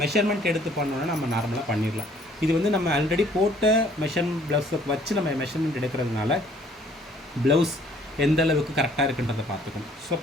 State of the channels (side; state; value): both; normal; correlation 0.59